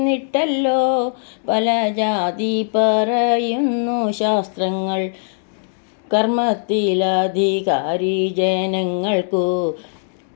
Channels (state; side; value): silent; right; digital silence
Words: പല ജാതി പറയുന്നു ശാസ്ത്രങ്ങൾ. കർമ്മത്തിലധികാരി ജനങ്ങൾക്കു